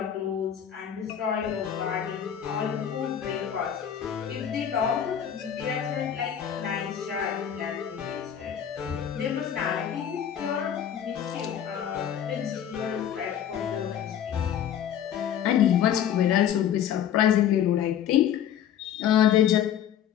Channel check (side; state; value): right; quieter; 9.5 dB